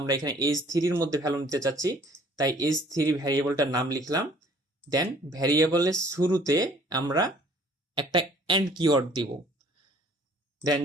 এখানে এজ3 মধ্যে ভ্যালু নিতে চাচ্ছি তাই এজ3 ভ্যারিয়েবলটার নাম লিখলাম। দেন ভ্যারিয়েবলের শুরুতে আমরা একটা এন্ড কিওয়ার্ড দিব। দেন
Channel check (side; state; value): both; normal; correlation 0.56